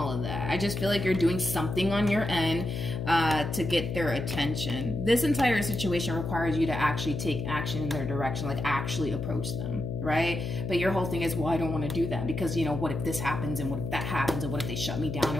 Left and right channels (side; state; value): left; noise; hum, 4 dB below the sound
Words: of that. I just feel like you're doing something on your end to get their attention. This entire situation requires you to actually take action in their direction, like actually approach them, right? But your whole thing is, well, I don't want to do that because, you know, what if this happens, and what if that happens, and what if they shut me down,